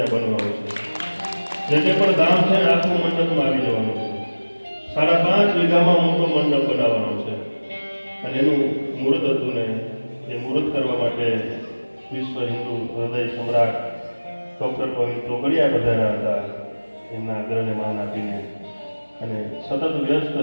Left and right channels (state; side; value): inverted; both; correlation -1.00